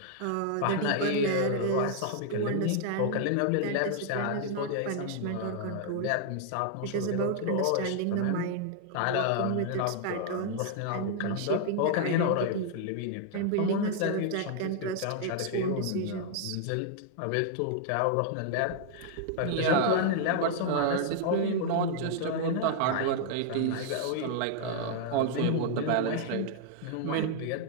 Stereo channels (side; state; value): both; different; correlation 0.00